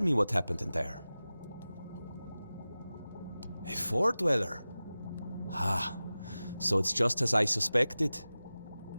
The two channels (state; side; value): inverted; both; correlation -0.96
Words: what happened in there. A Four Dweller? Ah, so it's just as I suspected.